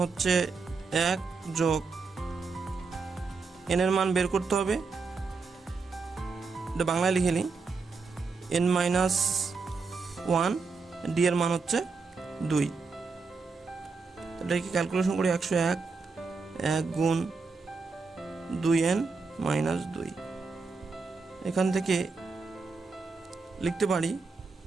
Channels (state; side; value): quieter; left; 4.5 dB